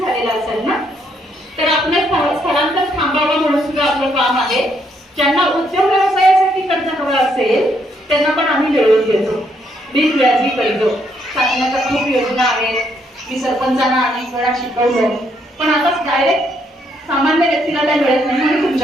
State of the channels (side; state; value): both; normal; correlation 0.73